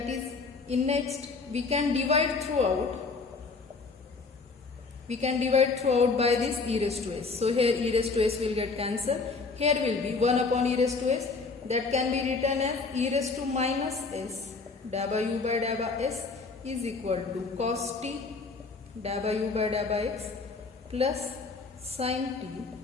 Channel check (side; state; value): right; quieter; 4.2 dB